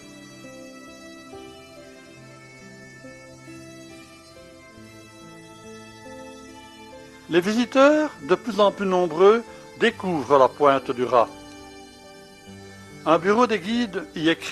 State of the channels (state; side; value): identical; both; correlation 1.00